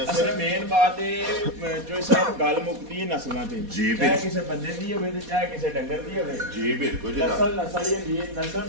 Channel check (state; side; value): late; left; 4.2 ms